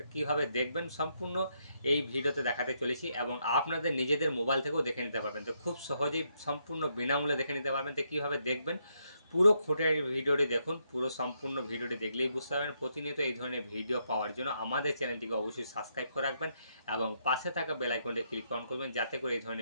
কিভাবে দেখবেন সম্পূর্ণ এই ভিডিওতে দেখাতে চলেছি এবং আপনাদের নিজেদের মোবাইল থেকেও দেখে নিতে পারবেন। তো খুব সহজেই সম্পূর্ণ বিনামূল্যে দেখে নিতে পারবেন। তো কীভাবে দেখবেন পুরো খুঁটির ভিডিওটি দেখুন, পুরো সম্পূর্ণ ভিডিওটি দেখলেই বুঝতে পারবেন। প্রতিনিয়ত এই ধরনের ভিডিও পাওয়ার জন্য আমাদের চ্যানেলটিকে অবশ্যই সাবস্ক্রাইব করে রাখবেন এবং পাশে থাকা বেল আইকনটি ক্লিক অন করবেন যাতে করে এই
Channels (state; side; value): inverted; both; correlation -0.77